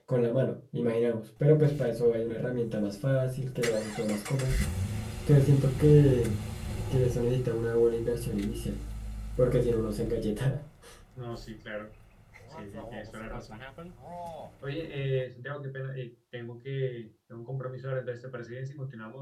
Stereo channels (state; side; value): identical; both; correlation 1.00